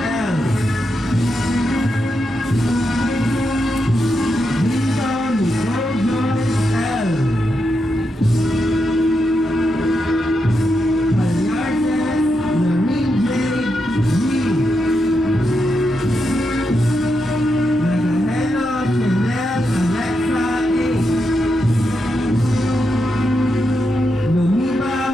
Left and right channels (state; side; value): normal; both; correlation 0.85